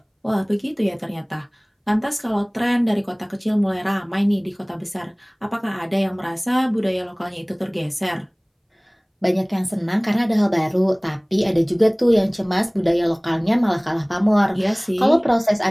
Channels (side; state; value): both; identical; correlation 1.00